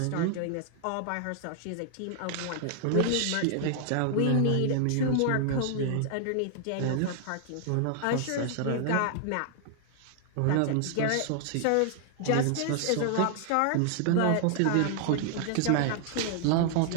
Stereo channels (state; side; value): different; both; correlation 0.00